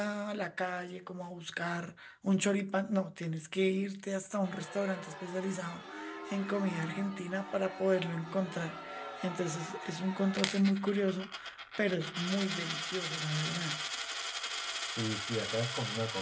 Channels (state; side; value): identical; both; correlation 1.00